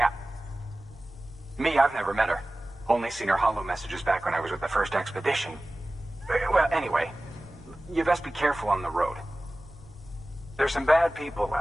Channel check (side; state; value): both; normal; correlation 0.97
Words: Me, I've never met her. Only seen her holo messages back when I was with the first expedition. Well, anyway, you best be careful on the road. There's some bad people